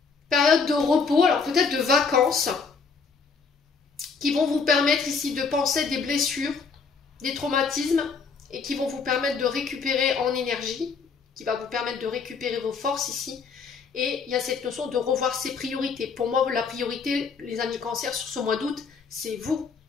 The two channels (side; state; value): right; quieter; 5.2 dB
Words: période de repos, alors peut-être de vacances, qui vont vous permettre ici de penser des blessures, des traumatismes, et qui vont vous permettre de récupérer en énergie, qui va vous permettre de récupérer vos forces ici, Et il y a cette notion de revoir ses priorités. Pour moi, la priorité, les amis Cancer, sur ce mois d'août, c'est vous